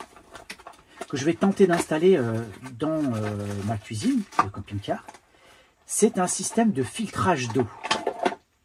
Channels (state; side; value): identical; both; correlation 1.00